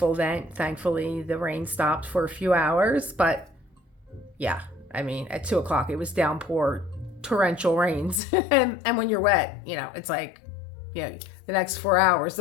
event. Thankfully, the rain stopped for a few hours. But yeah, I mean, at 2 o'clock, it was downpour, torrential rains. And when you're wet, it's like, the next 4 hours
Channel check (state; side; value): drops out; right; at 8.2 s